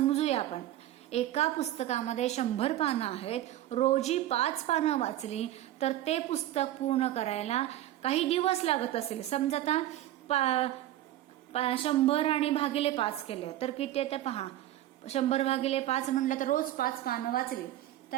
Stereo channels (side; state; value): left; quieter; 13.8 dB